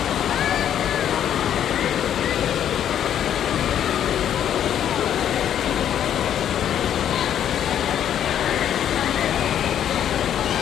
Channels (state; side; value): quieter; right; 10.0 dB